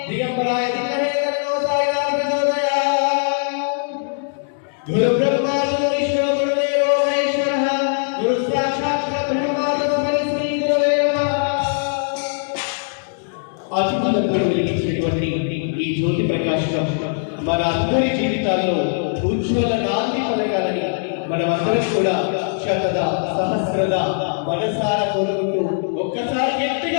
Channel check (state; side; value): silent; right; digital silence